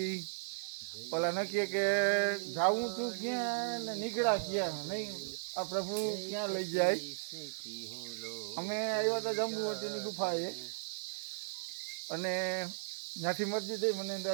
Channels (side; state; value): left; silent; 54 dB below the other